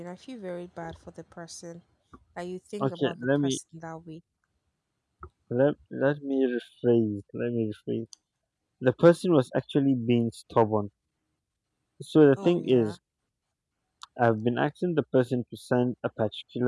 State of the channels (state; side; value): identical; both; correlation 1.00